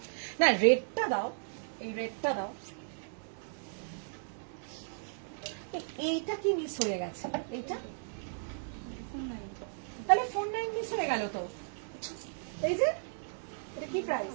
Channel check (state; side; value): silent; left; digital silence